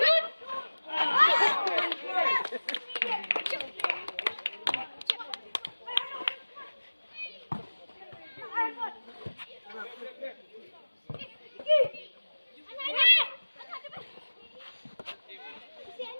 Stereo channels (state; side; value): inverted; both; correlation -1.00